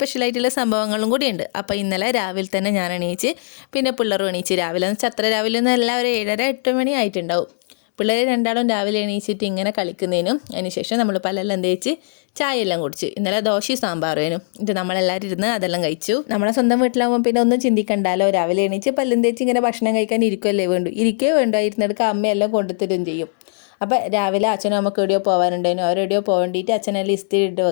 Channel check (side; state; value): right; silent; digital silence